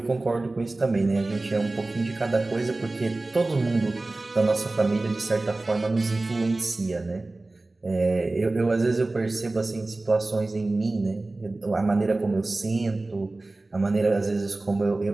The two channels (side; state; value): left; quieter; 3.0 dB